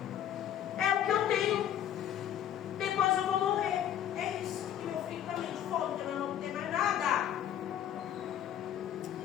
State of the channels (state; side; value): quieter; right; 10.5 dB